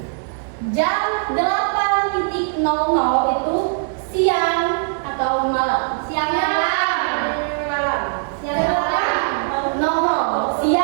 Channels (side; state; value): left; silent; digital silence